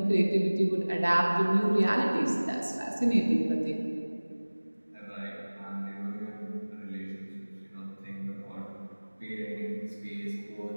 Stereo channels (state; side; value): inverted; both; correlation -1.00